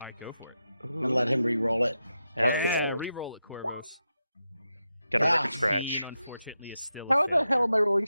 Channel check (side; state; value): both; inverted; correlation -0.88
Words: All right, go for it. and let him re-roll it. Yeah, re-roll it, Corvos. Got a Yeah. record scratch. 15, unfortunately, is still a How failure. the hell am I rolling